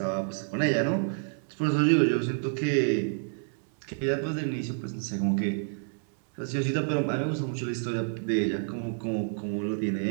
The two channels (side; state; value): left; silent; digital silence